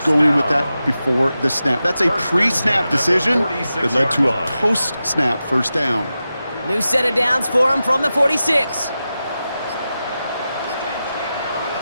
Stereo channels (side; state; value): both; inverted; correlation -0.92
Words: going with that before the snap. That's a pre-snap decision that led to a post-snap first down. New set of downs for him from the 46.